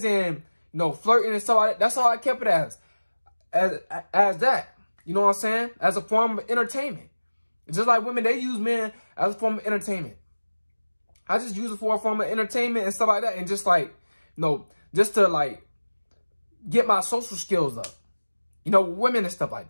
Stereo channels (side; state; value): both; inverted; correlation -1.00